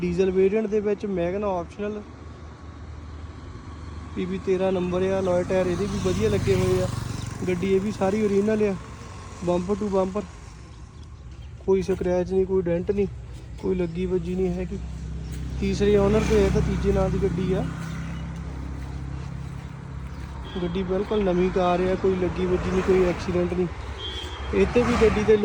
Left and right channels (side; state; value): both; identical; correlation 1.00